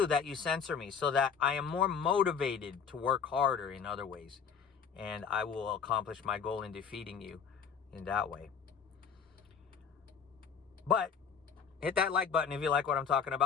that you censor me so that I am more motivated to work harder in other ways. And I will accomplish my goal in defeating you in that way. But hit that like button if you like what I'm talking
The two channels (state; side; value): quieter; right; 6.6 dB